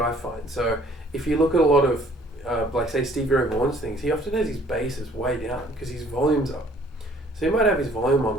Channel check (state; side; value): normal; both; correlation 0.57